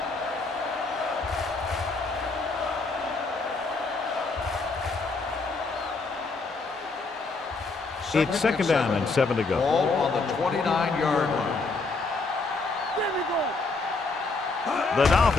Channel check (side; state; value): right; quieter; 3.8 dB